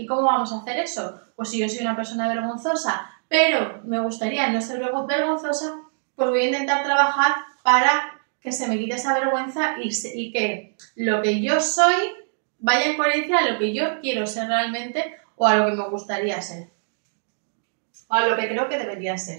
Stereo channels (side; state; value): left; silent; digital silence